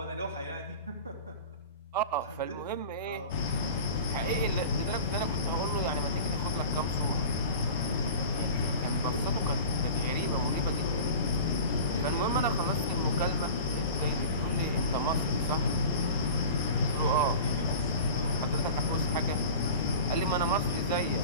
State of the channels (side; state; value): both; inverted; correlation -0.37